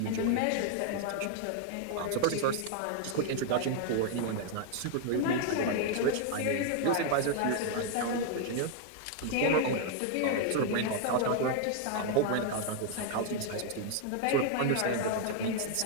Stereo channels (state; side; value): different; both; correlation 0.00